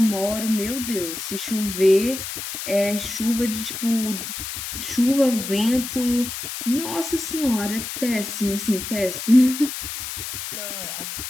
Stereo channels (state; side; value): noise; left; hiss, 6 dB below the sound